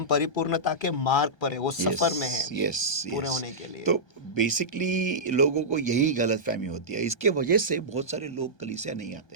परिपूर्णता के मार्ग पर है, वो सफर में है पूरे होने के लिए। तो बेसिकली लोगों को यही गलत फहमी होती है, इसके वजह से बहुत सारे लोग कलीसिया नहीं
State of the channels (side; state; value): right; late; 1.2 ms